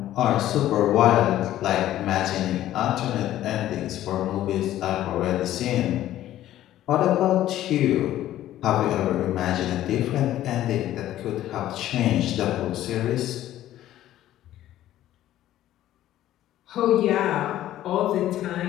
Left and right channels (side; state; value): right; quieter; 13.3 dB